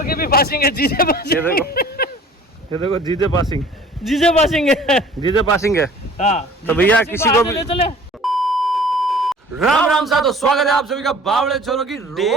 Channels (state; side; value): normal; both; correlation 0.48